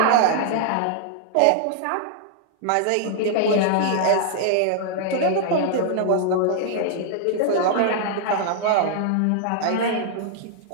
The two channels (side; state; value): both; different; correlation -0.01